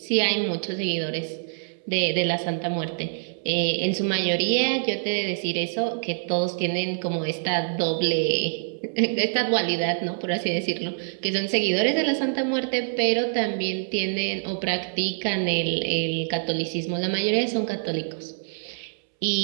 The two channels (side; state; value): left; silent; 61 dB below the other